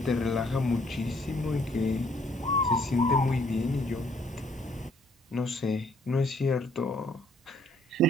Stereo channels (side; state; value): both; normal; correlation 0.65